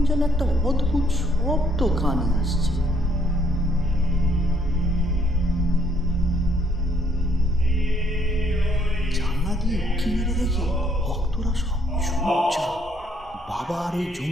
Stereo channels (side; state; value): both; normal; correlation 0.68